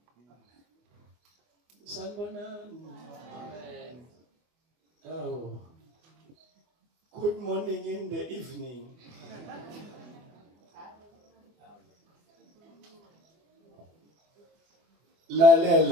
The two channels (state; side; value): late; left; 24 ms